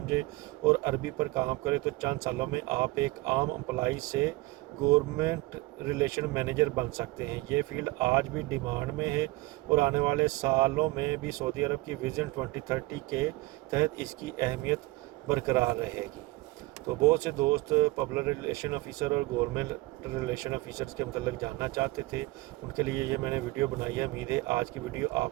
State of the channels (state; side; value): quieter; left; 20.6 dB